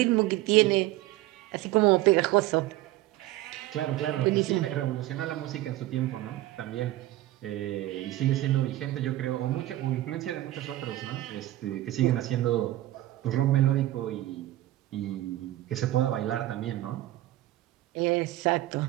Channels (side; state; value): left; quieter; 15.8 dB